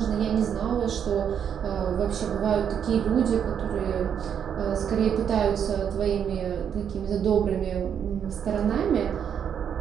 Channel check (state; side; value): quieter; left; 8.2 dB